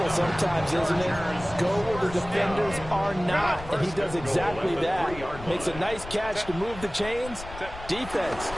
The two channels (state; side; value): noise; left; rumble, 13 dB below the sound